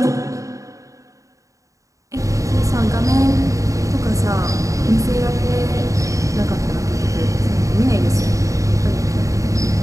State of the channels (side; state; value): left; late; 0.16 ms